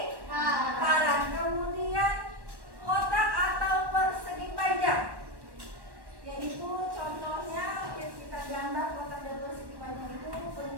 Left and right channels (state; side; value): late; left; 1.1 ms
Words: Kemudian kotak atau persegi panjang, yaitu contohnya kita gambar kotak dan persegi panjang itu